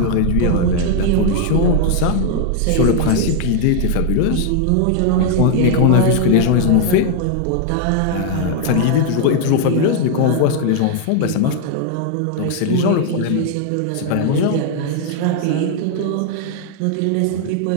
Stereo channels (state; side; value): different; both; correlation 0.00